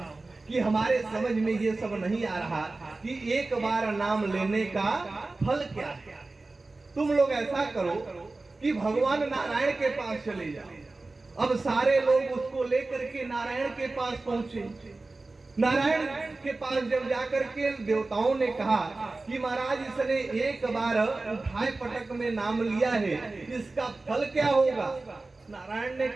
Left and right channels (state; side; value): quieter; left; 3.3 dB